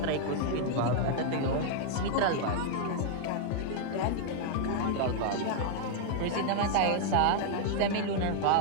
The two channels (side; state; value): both; different; correlation 0.00